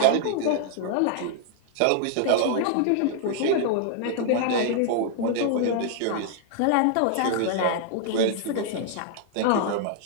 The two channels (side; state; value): both; different; correlation 0.00